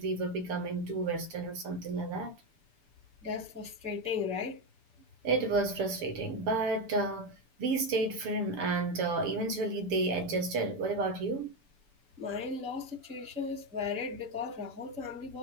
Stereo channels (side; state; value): left; late; 6.9 ms